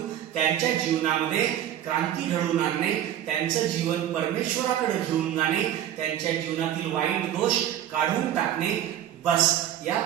त्यांच्या जीवनामध्ये क्रांती घडवून आणणे, त्यांचं जीवन परमेश्वराकडे घेऊन जाणे, त्यांच्या जीवनातील वाईट दोष काढून टाकणे, बस या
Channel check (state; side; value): quieter; left; 11.2 dB